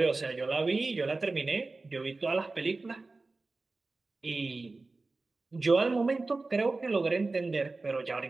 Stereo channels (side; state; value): left; quieter; 3.5 dB